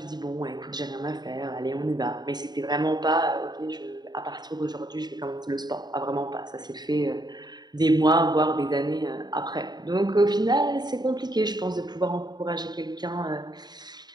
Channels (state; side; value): late; left; 0.20 ms